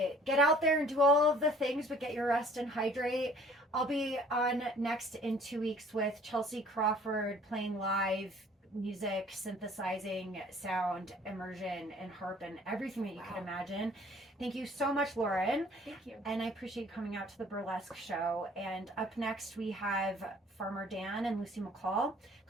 Get out there and do all of the things, but get your rest and hydrate. I'll be on next in 2 weeks with Chelsea Crawford playing live music, synthesizing, sound, immersion, and harp, and everything that you can imagine. Thank you so much, Lauren. Thank you. And I appreciate coming out to the burlesque show. And up next, we have Farmer Dan and Lucy McCall.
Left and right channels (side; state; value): both; normal; correlation 0.54